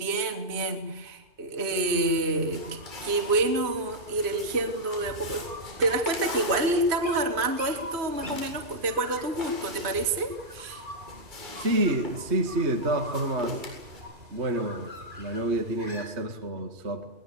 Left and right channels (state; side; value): late; left; 3.0 ms